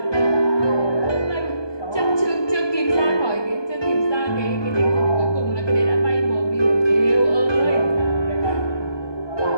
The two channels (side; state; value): right; late; 1.2 ms